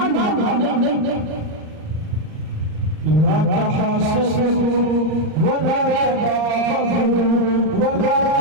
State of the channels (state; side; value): late; left; 38 ms